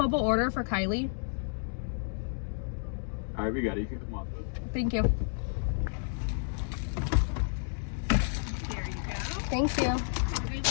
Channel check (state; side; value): silent; right; digital silence